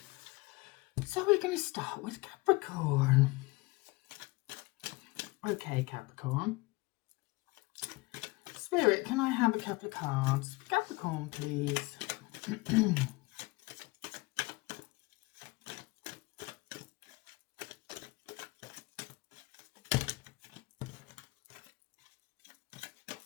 So we're going to start with Capricorn. Okay, Capricorn. Spirit, can I have a couple of cards? Capricorn, please.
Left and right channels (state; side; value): quieter; right; 23.4 dB